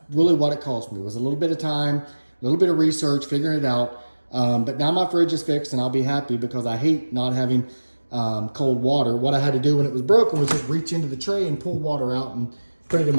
really what it cost me. It was a little bit of time, a little bit of research, figuring it out. But now my fridge is fixed and I'll be happy because I hate not having cold water. What I had to do when it was broken was just reach into the tray and pull water out and put it in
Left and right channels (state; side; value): inverted; both; correlation -1.00